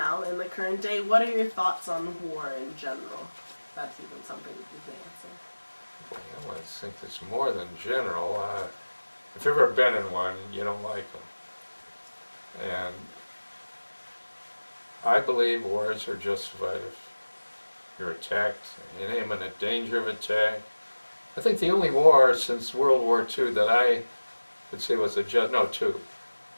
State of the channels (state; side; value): inverted; both; correlation -1.00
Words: in the current day, what are your thoughts on war in general? That's even something you can answer. Well, I think it's more than general. If you've ever been in one, you don't like them. And I believe wars are justified if you're attacked, in imminent danger of attack. I think the only war since World War II that I would say was two,